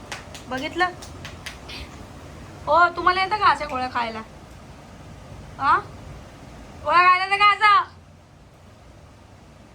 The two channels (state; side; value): identical; both; correlation 1.00